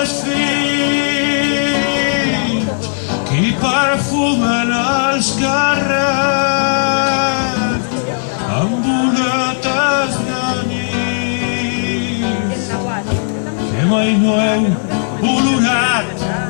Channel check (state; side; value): silent; right; digital silence